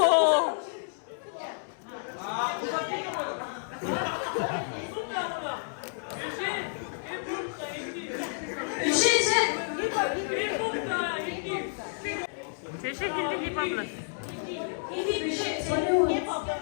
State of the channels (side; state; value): right; silent; 58 dB below the other